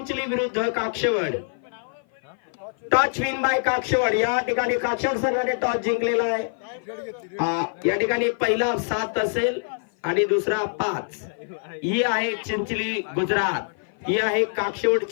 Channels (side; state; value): right; silent; 55 dB below the other